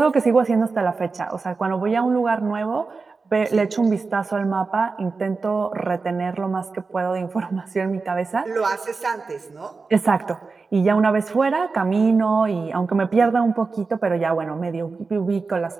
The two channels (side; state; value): left; quieter; 4.3 dB